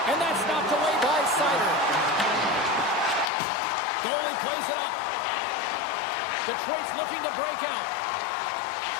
And that's knocked away by Sider. Goalie plays it up. Detroit's looking to break out.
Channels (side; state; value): right; drops out; at 3.3 s